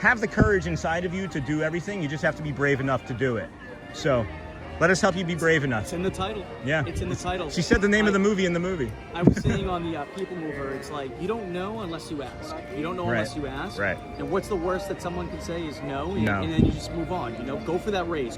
the courage inside of you to do everything. You just have to be brave enough to do it. So let us help you be brave enough. It's in the title. Yeah. It's in the title. She said the name of the movie in the movie. I was saying on the People Mover, it's like, you don't know unless you ask. You don't know Right. unless you ask. Right. And what's the worst that someone can say is no, and, No. and then you just move on. Go for that raise,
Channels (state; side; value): identical; both; correlation 1.00